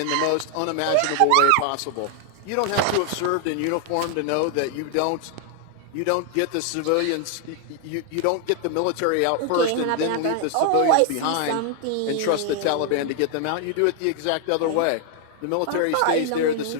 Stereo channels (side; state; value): both; different; correlation 0.00